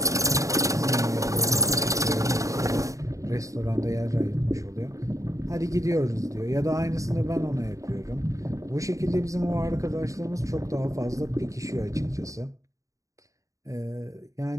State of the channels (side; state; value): left; late; 0.16 ms